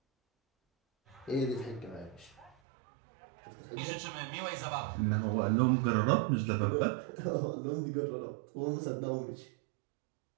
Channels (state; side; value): drops out; left; at 2.6 s